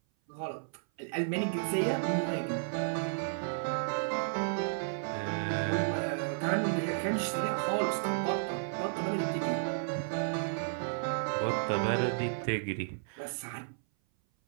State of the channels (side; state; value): left; silent; 56 dB below the other